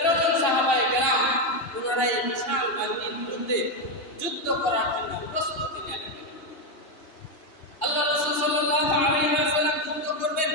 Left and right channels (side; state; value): right; late; 2.8 ms